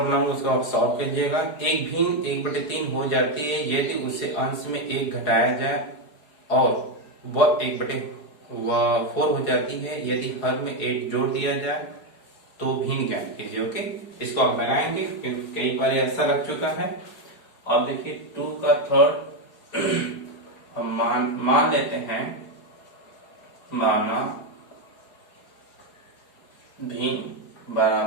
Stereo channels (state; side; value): late; right; 4.8 ms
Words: बनाऊंगा, उसको आप सॉल्व कीजिएगा। एक भिन्न 1/3 हो जाती है यदि उसे अंश में 1 घटाया जाए, और वह 1/4 हो जाती है यदि हर में 1 जोड़ दिया जाए, तो भिन्न ज्ञात कीजिए। ओके, इसको आप लगाएंगे क्योंकि कई बार ऐसा लग चुका है। अब देखिए 2 का थर्ड हम मान लेते हैं, माना भिन्न